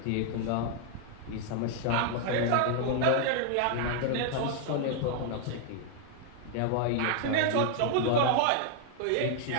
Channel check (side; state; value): both; different; correlation 0.00